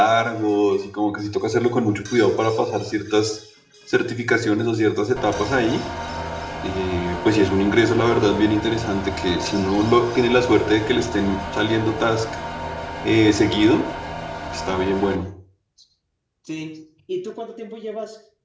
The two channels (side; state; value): both; identical; correlation 1.00